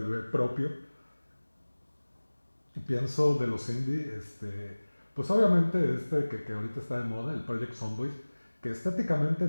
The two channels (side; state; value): both; inverted; correlation -1.00